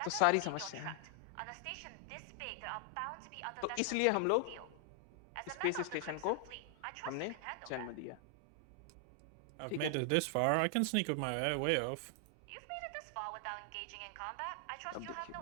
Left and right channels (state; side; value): different; both; correlation 0.00